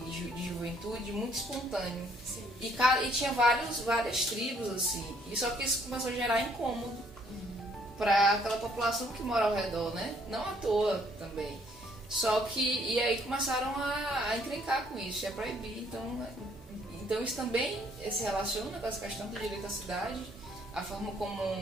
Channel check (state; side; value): normal; both; correlation 0.65